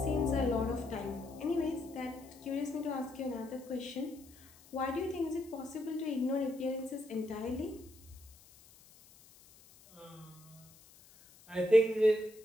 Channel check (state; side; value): noise; left; hiss, 24 dB below the sound